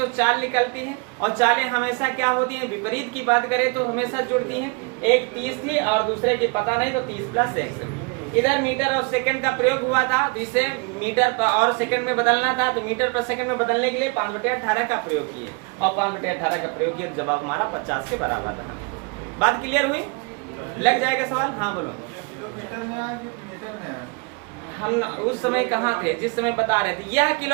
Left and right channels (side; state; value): left; quieter; 31.9 dB